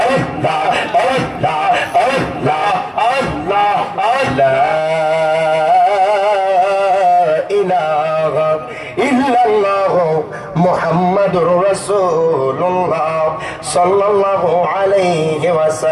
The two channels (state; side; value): identical; both; correlation 1.00